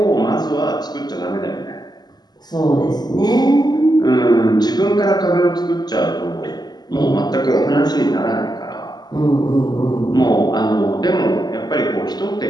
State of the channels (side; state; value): right; late; 0.20 ms